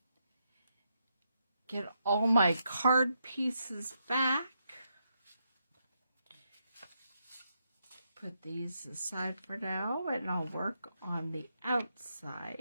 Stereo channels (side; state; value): both; inverted; correlation -0.81